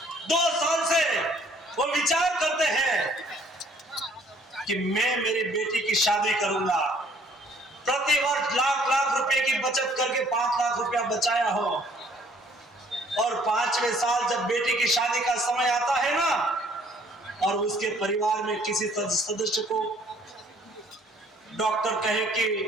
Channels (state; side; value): normal; both; correlation 0.60